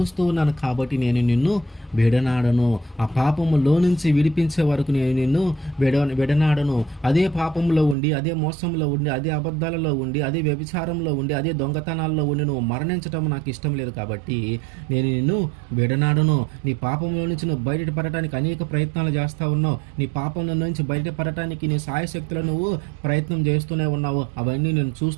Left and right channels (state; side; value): drops out; left; at 8.0 s